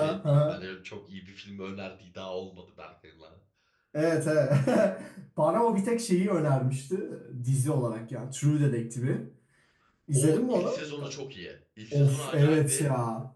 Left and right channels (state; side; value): identical; both; correlation 1.00